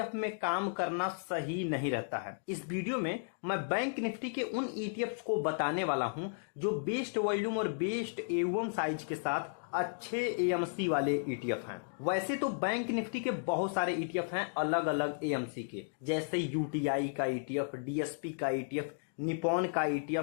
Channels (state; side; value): silent; right; digital silence